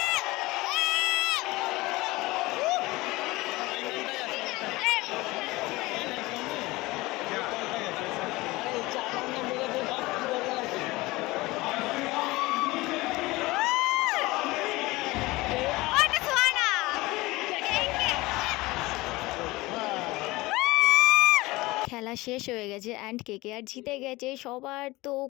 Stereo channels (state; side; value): quieter; right; 20.8 dB